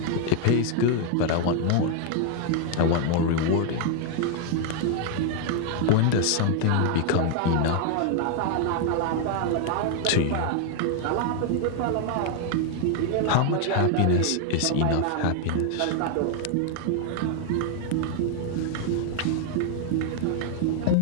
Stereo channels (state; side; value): different; both; correlation 0.00